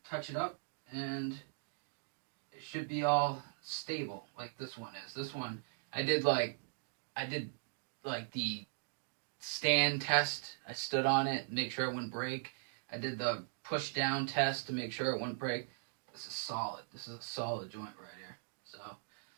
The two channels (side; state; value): left; silent; digital silence